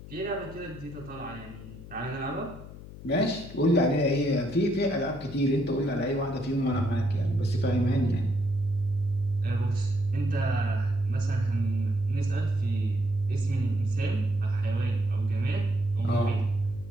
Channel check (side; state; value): left; noise; hum, 15 dB below the sound